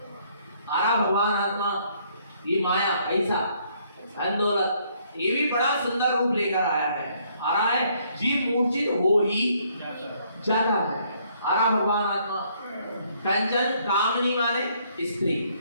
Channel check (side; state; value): both; inverted; correlation -0.67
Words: आरा भगवान आत्मा ये माया ऐसा धन दौलत ये भी बड़ा सुंदर रूप लेकर आया है। आ रहा है जीव मूर्छित हो ही जाता है। आरा भगवान आत्मा। कंचन कामनी माने स्त्री।